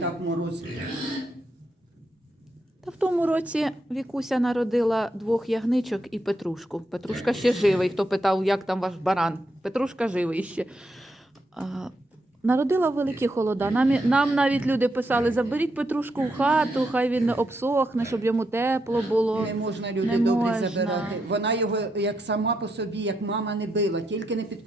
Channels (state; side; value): normal; both; correlation 0.81